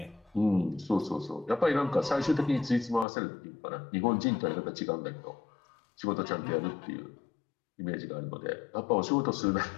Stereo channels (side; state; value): right; drops out; at 3.1 s